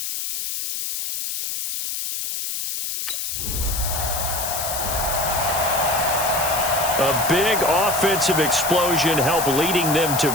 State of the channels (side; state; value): left; noise; hiss, 4 dB below the sound